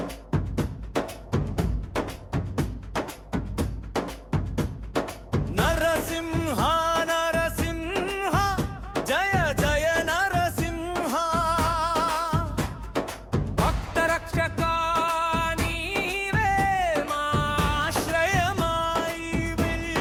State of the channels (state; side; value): identical; both; correlation 1.00